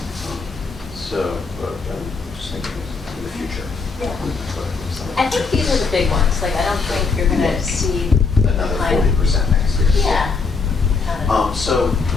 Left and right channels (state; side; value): quieter; right; 4.6 dB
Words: So, I'm just thinking in the future. Yeah. I think these are the big ones. Like, I don't think you're going to see Another kind of- 40% next year. Yeah. Kind of. So